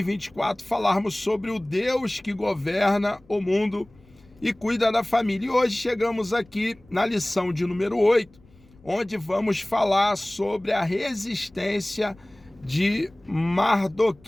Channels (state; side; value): noise; left; rumble, 28 dB below the sound